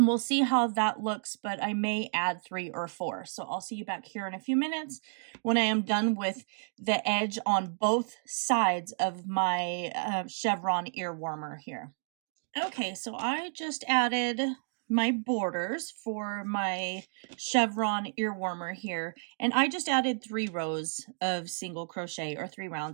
we'll see how that looks, but I may add 3 or 4. So I'll see you back here in a few minutes when I am done with the edge on both sides of my chevron ear warmer here. Okay, so I just added my borders for my chevron ear warmer here, and I just added 3 rows of single crochet, or 3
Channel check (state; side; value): silent; left; digital silence